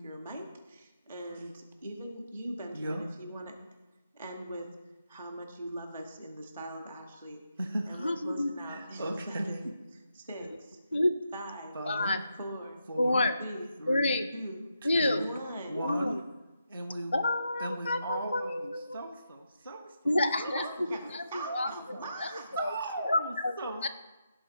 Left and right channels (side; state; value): both; inverted; correlation -0.83